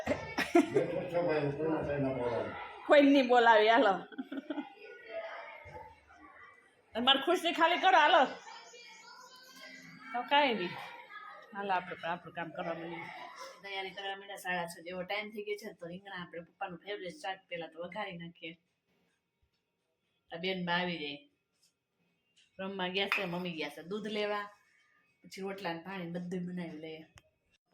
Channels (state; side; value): identical; both; correlation 1.00